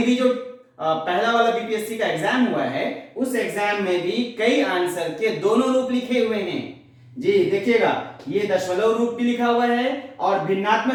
भी जो पहला वाला बीपीएससी का एग्जाम हुआ है, उस एग्जाम में भी कई आंसर के दोनों रूप लिखे हुए हैं जी। देखिएगा ये दशमलव रूप भी लिखा हुआ है और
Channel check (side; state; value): both; identical; correlation 1.00